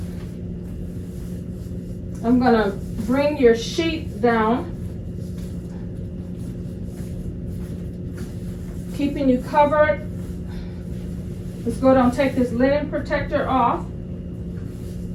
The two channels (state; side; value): identical; both; correlation 1.00